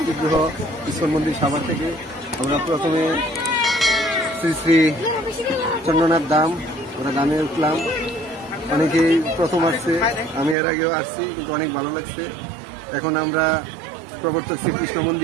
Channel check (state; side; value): drops out; left; at 10.6 s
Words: বিগ্রহ ইস্কন মন্দির সাভার থেকে। আমরা প্রথমে শ্রী শ্রী চন্দ্রনাথ ধাম, আমরা ধামে উঠলাম। অনেকেই প্রথম আসছে, আমি এর আগেও আসছি, কিন্তু অনেক ভালো লাগছে। এখন আমরা প্রবর্তক শ্রীকৃষ্ণ